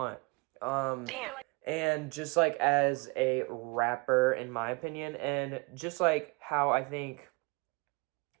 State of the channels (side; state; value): left; quieter; 28.7 dB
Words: Damn. And just, like, as a rapper, in my opinion, and just, like, how I think